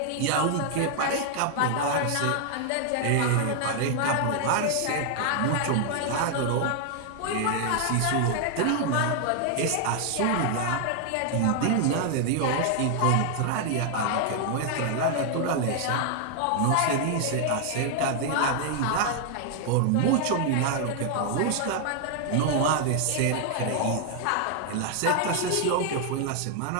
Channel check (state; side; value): different; both; correlation 0.00